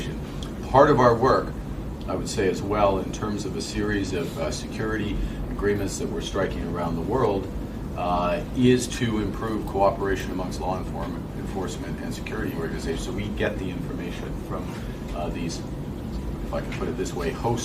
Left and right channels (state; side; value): identical; both; correlation 1.00